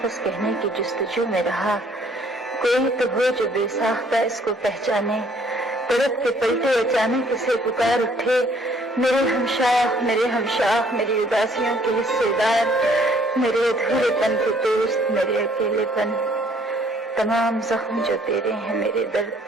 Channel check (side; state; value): both; normal; correlation 0.62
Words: کہنے کی جستجو میں رہا، کوئی تو ہو جو بے ساختہ اس کو پہچانے، تڑپ کے پلٹے اچانک اسے پکار اٹھے، میرے ہمشاہ، میری اداسیوں کے حصے دار، میرے ادھورے پن کے دوست، میرے اکیلے پن، تمام زخم جو تیرے ہیں، میرے درد